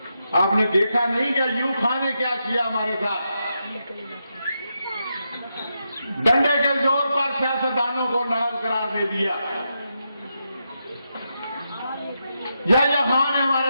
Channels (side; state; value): both; inverted; correlation -0.85